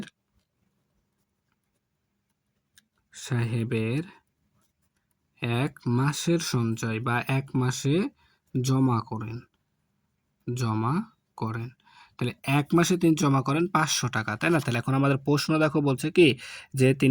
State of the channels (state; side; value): identical; both; correlation 1.00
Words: ১ মাসের সঞ্চয় বা ১ মাসে জমা করেন। তাহলে ১ মাসে তিনি জমা করেন ৫০০ টাকা, তাই না? তাহলে এখন আমাদের প্রশ্ন দেখো, বলছে কি, যে